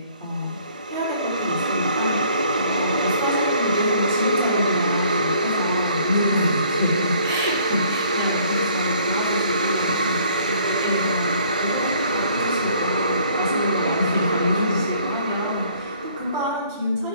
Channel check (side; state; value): both; inverted; correlation -0.59